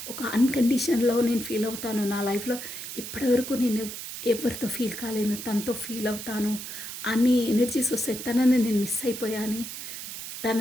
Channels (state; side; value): noise; right; hiss, 9 dB below the sound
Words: ఒక అన్కండిషన్ లవ్ నేను ఫీల్ అవుతాను నా లైఫ్లో. ఇప్పటివరకు నేను ఎవరితో ఫీల్ కాలేను, తనతో ఫీల్ అవుతాను అన్ని ఎనర్జీస్ వస్తాయి. తనని నేను మిస్ అయిపోయాను,